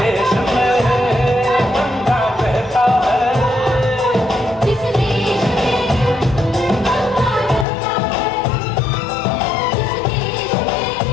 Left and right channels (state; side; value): drops out; right; at 7.7 s